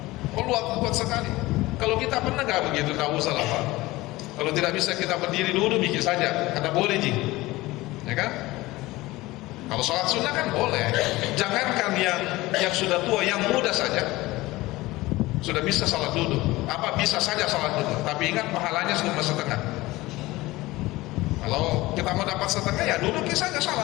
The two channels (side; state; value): right; quieter; 19.4 dB